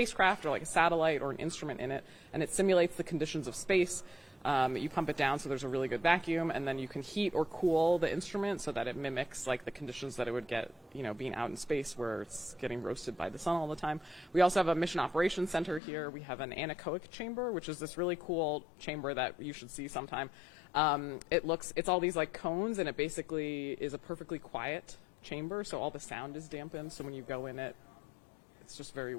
or like a satellite or an instrument in it, and it simulates the conditions of space. You pump it down so there's a really good vacuum, and then you can heat or cool the instrument so that it mimics like the conditions that it would get, being out in space where it's getting roasted by the sun all the time. We also have a mission operations center here. We have an anechoic chamber, which is this really cool chamber that you should see sometime. It's all these like cones, and it basically is a perfectly quiet chamber, so all the sound is dampened. So when you go in it, it's just very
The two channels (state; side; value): drops out; right; at 15.8 s